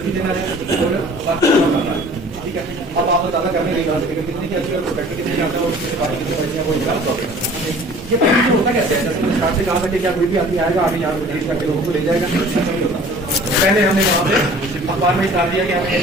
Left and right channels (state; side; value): normal; both; correlation 0.48